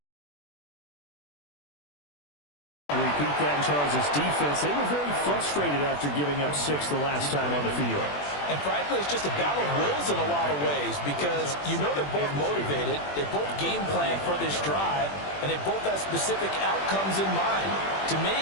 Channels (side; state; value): right; late; 21 ms